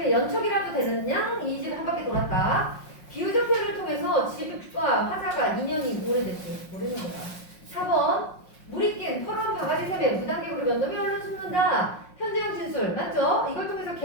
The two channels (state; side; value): late; right; 5.5 ms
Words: 연척이라도 되는 양? 이 집 한 바퀴 돌았다. 비유적 표현을 통해서 집과 화자가 인연이 오래됐지. 모르는 거야. 4번 물이 낀 퍼런 바가지 샘에 무단객으로 몇 놈이 얼른 숨는다. 현재형 진술 맞죠? 이걸 통해서